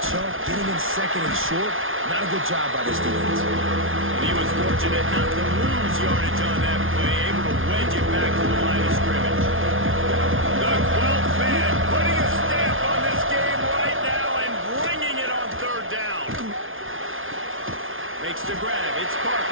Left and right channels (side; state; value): left; late; 0.59 ms